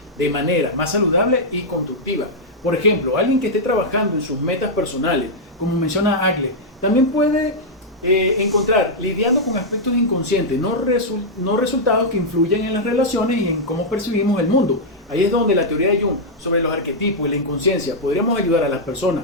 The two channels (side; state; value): both; normal; correlation -0.05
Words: de manera más saludable y constructiva. Por ejemplo, alguien que esté trabajando en sus metas personales, como menciona Agle, también puede encontrar lidiando con aspectos inconscientes, no resultados que influyen en las relaciones y en cómo percibimos el mundo. Ahí es donde la teoría de Jung sobre los arquetipos y la inconsciencia podríamos ayudar a las